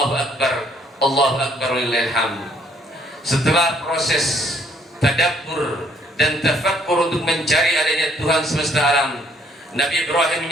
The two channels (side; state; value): both; normal; correlation 0.65